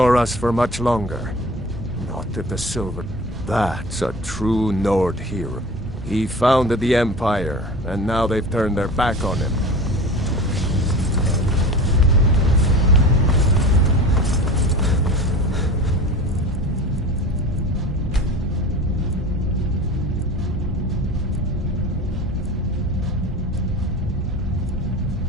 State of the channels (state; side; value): normal; both; correlation 0.36